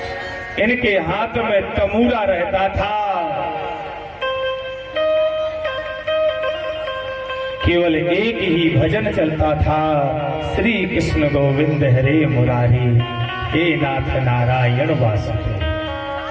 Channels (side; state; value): both; identical; correlation 1.00